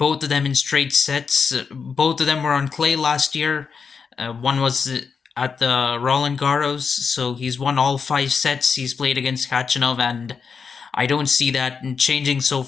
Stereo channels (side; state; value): right; quieter; 5.8 dB